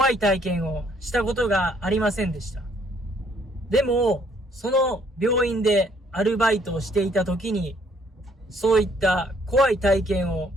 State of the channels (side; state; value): both; normal; correlation 0.65